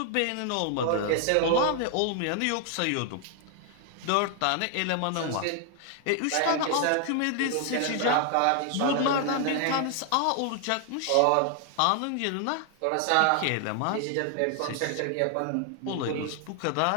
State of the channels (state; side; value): different; both; correlation 0.00